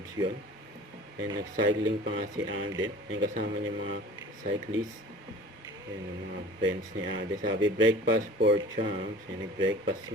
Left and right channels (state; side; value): normal; both; correlation 0.43